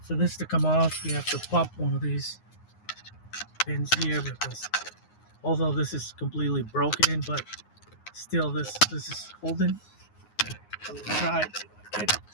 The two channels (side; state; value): right; late; 9.6 ms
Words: for this to come off, you have to pop one of these pins here, because although this is completely broken, but still this is holding. I'm gonna try to get it.